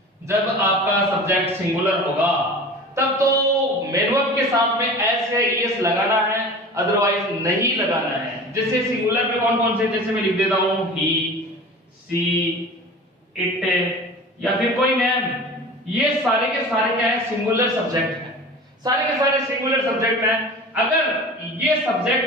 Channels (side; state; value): both; normal; correlation 0.37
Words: जब आपका सब्जेक्ट सिंगुलर होगा तब तो मैन वर्ब के साथ में एस या ईएस लगाना है, अदरवाइज नहीं लगाना है. जैसे सिंगुलर में कौन कौन से, जैसे मैं लिख देता हूं ही, सी, इट या फिर कोई नेम. ये सारे के सारे क्या है? सिंगुलर सब्जेक्ट है. सारे के सारे सिंगुलर सब्जेक्ट हैं. अगर ये